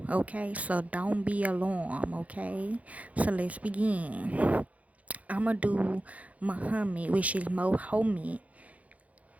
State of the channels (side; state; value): left; late; 0.068 ms